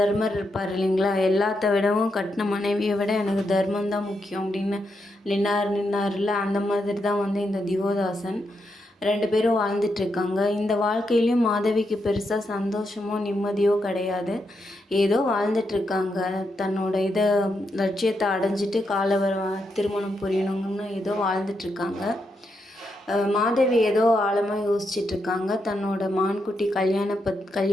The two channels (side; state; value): both; normal; correlation 0.82